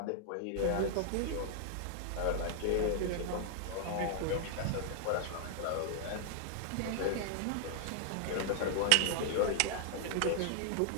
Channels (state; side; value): different; both; correlation 0.00